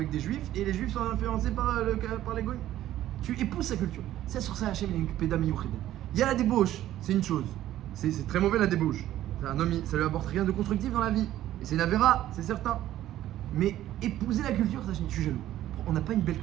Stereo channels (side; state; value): left; quieter; 13.3 dB